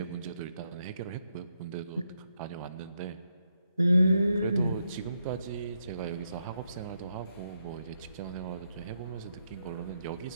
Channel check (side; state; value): both; inverted; correlation -0.80